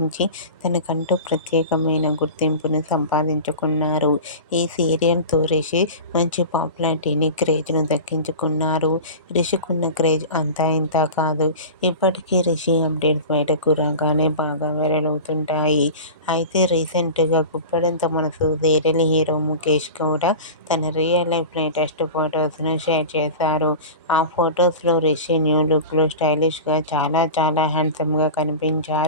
తనకంటూ ప్రత్యేకమైన గుర్తింపును సంపాదించుకున్నారు. ఈ సీరియల్తో రిషి మంచి పాపులారిటీని, క్రేజ్ను దక్కించుకున్నారు. రిషికున్న క్రేజ్ అంతా ఇంతా కాదు. ఇప్పటికీ రిషి అప్డేట్స్ బయటకు రాగానే బాగా వైరల్ అవుతుంటాయి. అయితే రీసెంట్గా గుప్పడంత మనసు సీరియల్ హీరో ముఖేష్ గౌడ తన రియల్ లైఫ్ లేటెస్ట్ ఫొటోస్ను షేర్ చేశారు. ఆ ఫొటోస్లో రిషి న్యూ లుక్లో స్టైలిష్గా చాలా చాలా హ్యాండ్సమ్గా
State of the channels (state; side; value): inverted; both; correlation -0.32